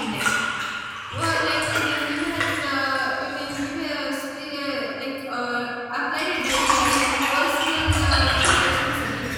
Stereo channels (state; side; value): identical; both; correlation 1.00